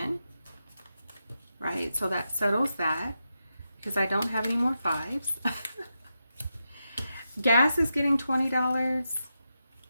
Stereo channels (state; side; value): inverted; both; correlation -0.88